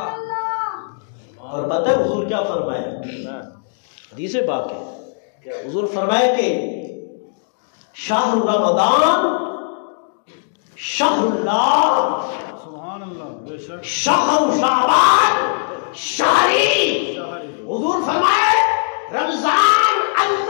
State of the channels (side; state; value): right; silent; digital silence